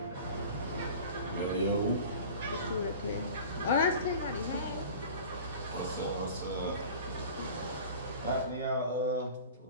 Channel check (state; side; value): inverted; both; correlation -0.39